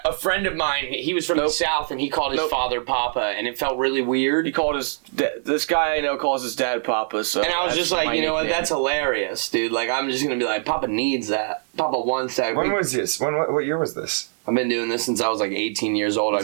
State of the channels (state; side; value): silent; left; digital silence